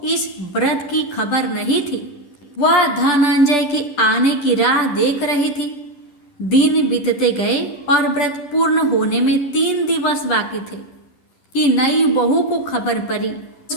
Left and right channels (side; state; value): right; late; 10 ms